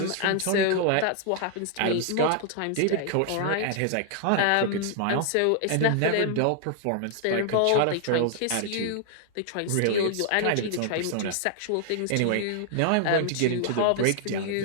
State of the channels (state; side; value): different; both; correlation 0.00